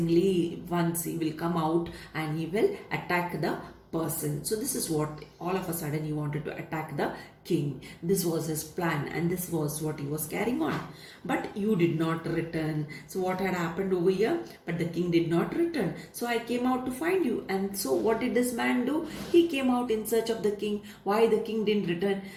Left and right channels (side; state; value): both; identical; correlation 1.00